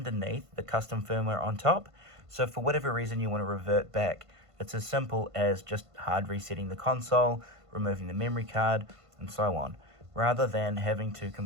the custom firmware on top. So for whatever reason you want to revert back, it's as simple as just hard resetting the console, removing the memory card, and so on. Rather than having to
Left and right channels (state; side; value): late; left; 1.5 ms